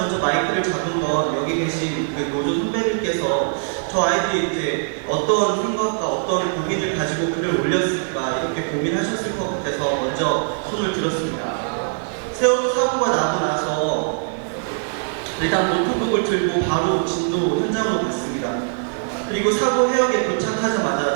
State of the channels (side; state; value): left; silent; 64 dB below the other